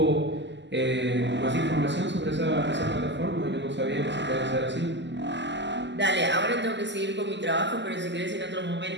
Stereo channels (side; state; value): left; late; 0.52 ms